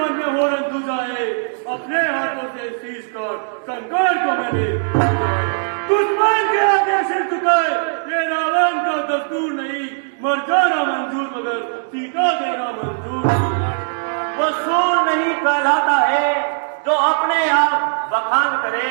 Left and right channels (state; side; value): silent; left; 66 dB below the other